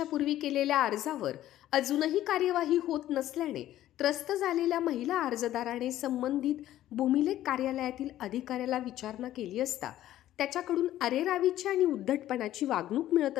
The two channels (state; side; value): quieter; right; 13.3 dB